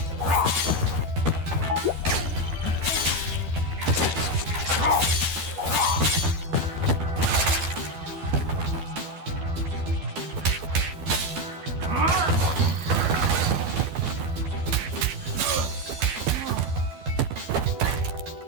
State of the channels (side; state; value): left; late; 12 ms